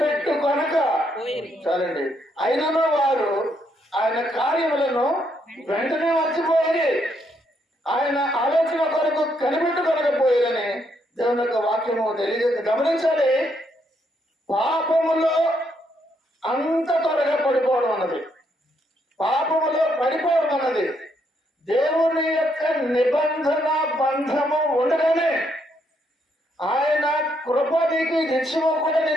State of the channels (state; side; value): normal; both; correlation 0.75